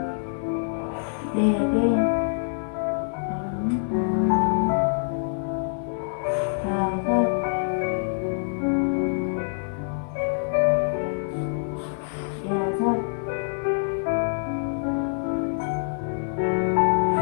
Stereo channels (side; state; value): right; silent; 61 dB below the other